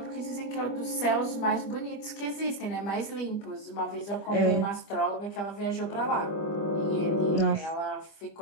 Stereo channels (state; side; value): late; right; 25 ms